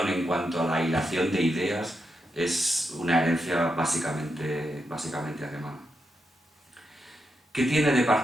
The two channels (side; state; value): both; normal; correlation 0.85